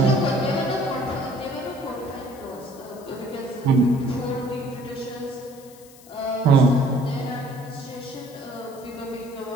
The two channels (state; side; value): noise; left; hiss, 22 dB below the sound